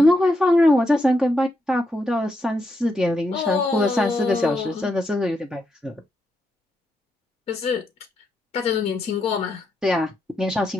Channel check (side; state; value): both; normal; correlation 0.82